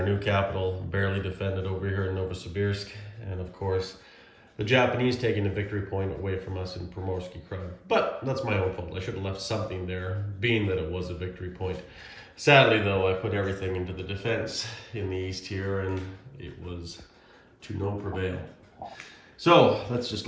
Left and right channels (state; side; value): identical; both; correlation 1.00